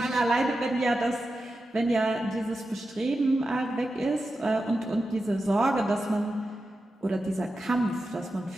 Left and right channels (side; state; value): both; normal; correlation 0.91